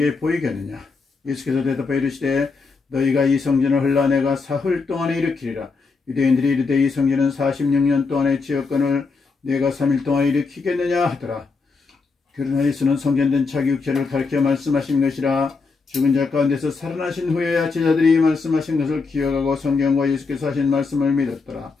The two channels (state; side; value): quieter; right; 4.5 dB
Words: 보이겠느냐. 예수께서 대답하여 이르시되 너희가 이 성전을 헐라 내가 사흘 동안에 일으키리라. 유대인들이 이르되 이 성전은 46년 동안의 지역권을 내가 3일 동안에 일으키겠느냐 하더라. 그러나 예수는 성전된 자기 육체를 가르쳐 말씀하신 것이라. 죽은 자 가운데서 살아나신 후에야 제자들이 말씀하신 것을 기억하고 성경과 예수께서 하신 말씀을 믿었더라.